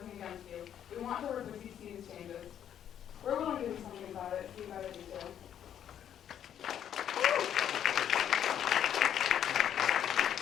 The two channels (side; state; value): right; quieter; 9.7 dB